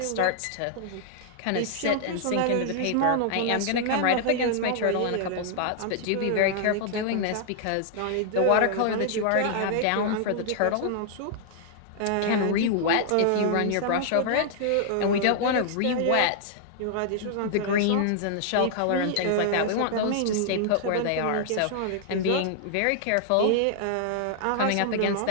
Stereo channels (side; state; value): both; different; correlation -0.01